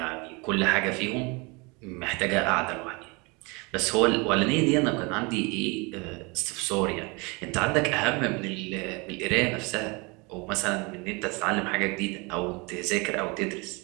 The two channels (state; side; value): quieter; left; 28.1 dB